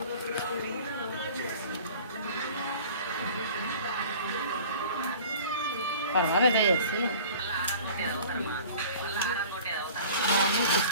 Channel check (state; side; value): inverted; both; correlation -0.45